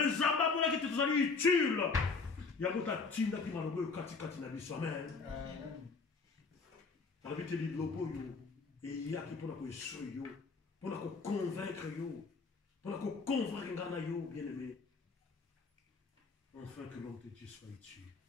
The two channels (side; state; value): right; quieter; 4.6 dB